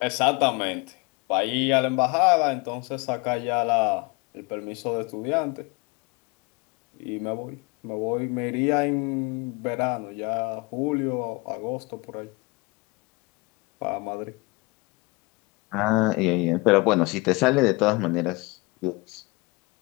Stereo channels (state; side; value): quieter; right; 26.3 dB